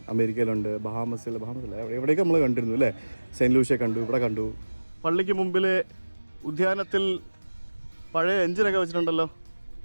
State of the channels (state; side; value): inverted; both; correlation -1.00